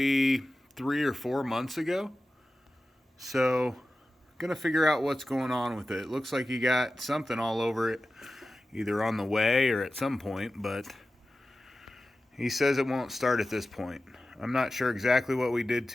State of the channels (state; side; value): normal; both; correlation 0.94